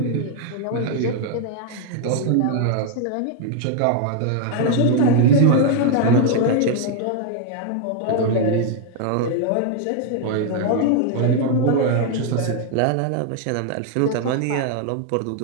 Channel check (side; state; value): both; different; correlation 0.00